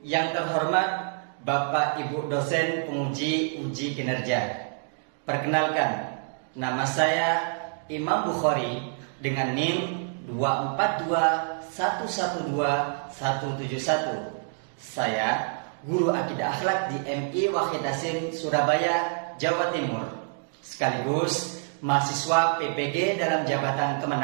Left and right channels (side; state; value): left; silent; digital silence